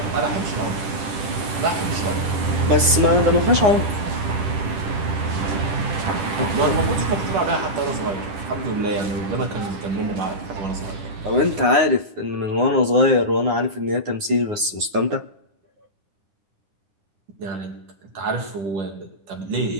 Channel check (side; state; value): left; late; 9.7 ms